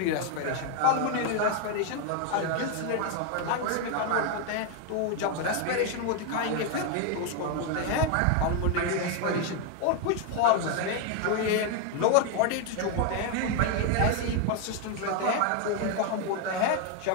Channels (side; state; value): both; different; correlation 0.01